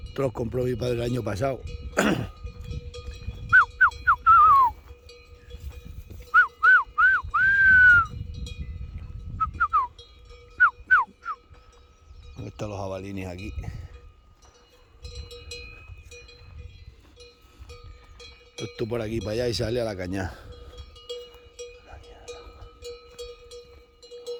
Esto los compró mi padre el año pasado. ¿Dónde están los jabalines aquí? Esto por aquí para allá y sale a la cañada.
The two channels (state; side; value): identical; both; correlation 1.00